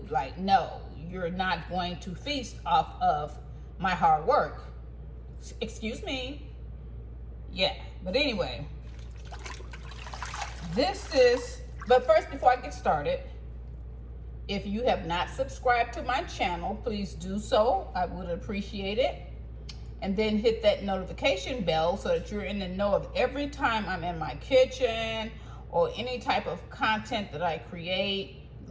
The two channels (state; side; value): identical; both; correlation 1.00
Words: Like, no, you're not going to feast off of my hard work. Excuse me. Yeah, but anyway, but first, before I get started, if you have not subscribed to my channel, please do so. I would appreciate it. And then hit that notification bell so that you're in the know of every time I'm in my kitchen or any type of content that I create,